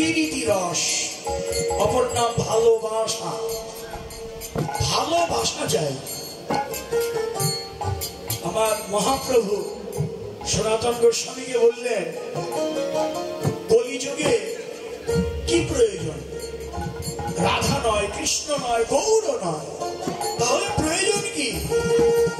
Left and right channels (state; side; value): identical; both; correlation 1.00